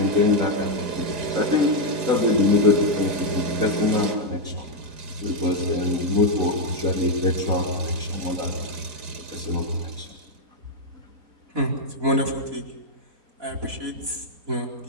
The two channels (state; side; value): late; left; 4.9 ms